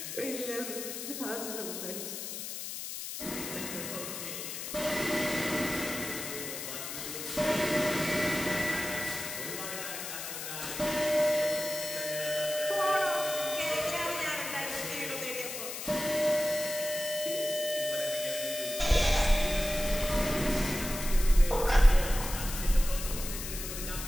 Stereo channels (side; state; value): left; noise; hiss, 7 dB below the sound